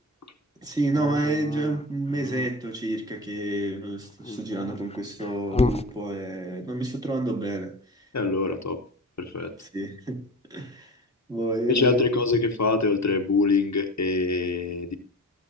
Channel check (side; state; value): both; normal; correlation 0.33